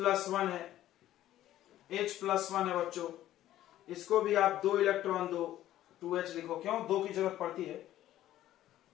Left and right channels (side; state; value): right; quieter; 13.4 dB